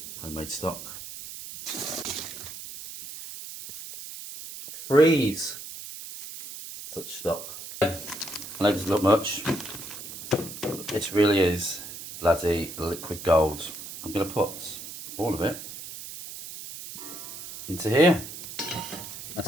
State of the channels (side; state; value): right; noise; hiss, 11 dB below the sound